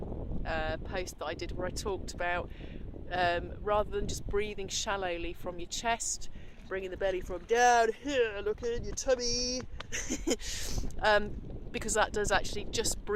post that I did where I talked about rather than just breathing shallowly from your chest, bringing the belly from down here, look in your tummy, because that does actually, just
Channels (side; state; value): both; identical; correlation 1.00